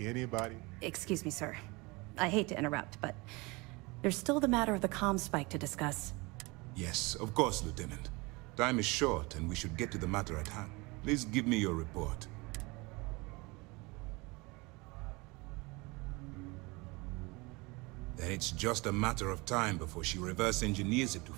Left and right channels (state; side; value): quieter; left; 25.4 dB